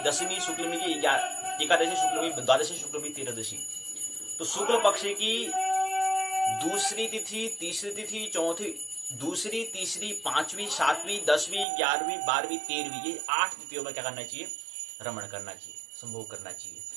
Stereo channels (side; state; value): left; drops out; at 11.7 s